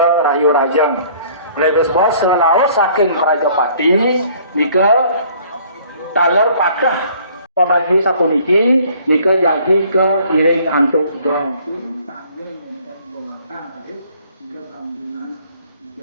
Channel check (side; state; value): both; inverted; correlation -0.56